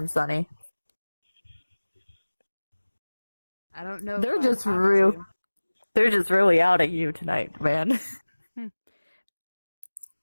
Sunny. I don't know. They're just really out at you tonight, man.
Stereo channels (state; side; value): inverted; both; correlation -1.00